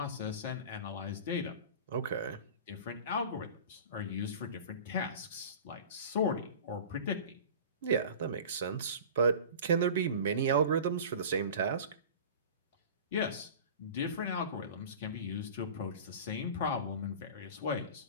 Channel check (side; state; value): both; inverted; correlation -0.37